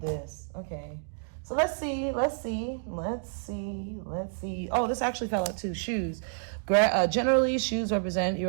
Okay. So let's see. Oh, this actually fell out too. Shoes. Generally, shoes represent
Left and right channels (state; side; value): silent; left; digital silence